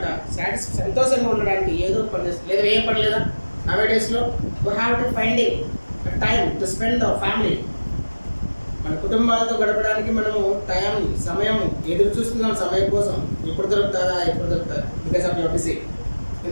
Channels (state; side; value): inverted; both; correlation -1.00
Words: సంతోషంగా ఉండడానికి ఏదో పని చేస్తుంది. లేదా ఏం పని లేదా? నవేడేస్లో we have to finding time to spend our family. మన కుటుంబాలతో గడపడానికి మనము సమయం ఎదురు చూస్తున్నాం సమయం కోసం. ఎప్పుడు దొరుకుతుందా బికాస్ ఆఫ్ యువర్ బిజీ.